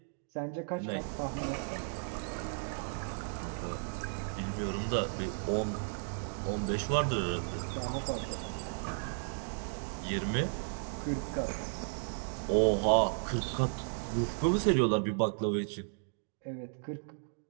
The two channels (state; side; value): silent; left; digital silence